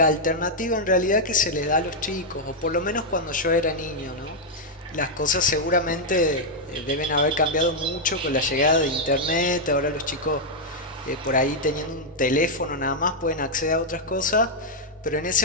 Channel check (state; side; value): normal; both; correlation -0.03